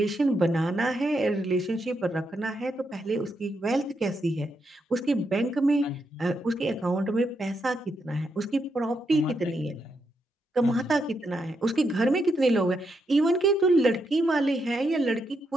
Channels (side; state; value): both; normal; correlation 0.81